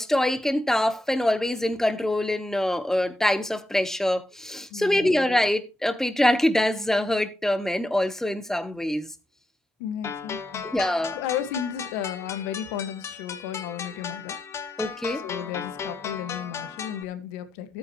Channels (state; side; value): normal; both; correlation 0.85